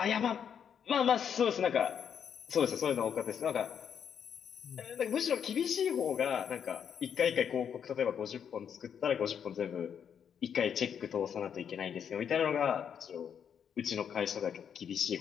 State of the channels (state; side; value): quieter; right; 8.0 dB